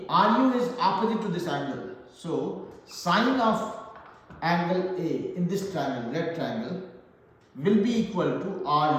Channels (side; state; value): both; identical; correlation 1.00